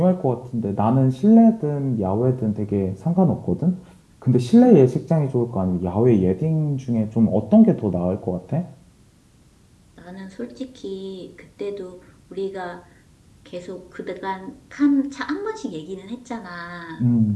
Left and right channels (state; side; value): identical; both; correlation 1.00